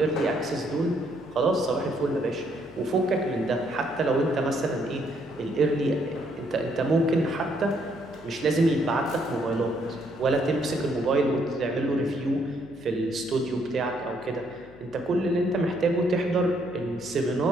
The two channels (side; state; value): left; noise; hum, 23 dB below the sound